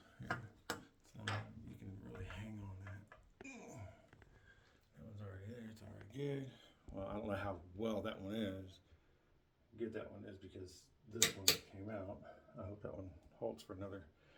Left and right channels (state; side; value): identical; both; correlation 1.00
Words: Here. So you can really hang on that. That one's already there. It's already good. Well, I don't know how well that one is. Good that one is because this one came out. I hope that one holds for another